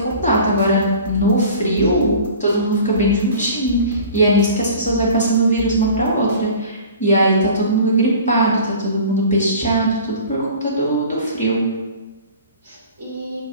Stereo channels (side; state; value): both; inverted; correlation -0.43